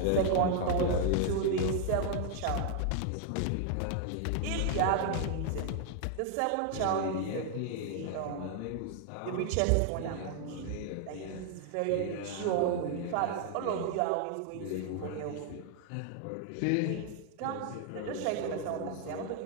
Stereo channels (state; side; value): different; both; correlation 0.00